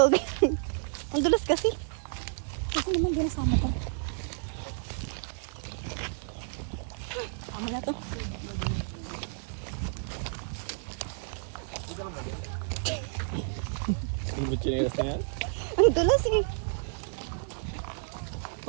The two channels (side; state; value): left; silent; digital silence